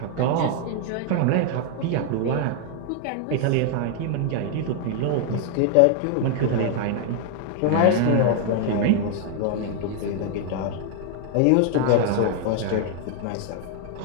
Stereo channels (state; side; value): different; both; correlation 0.00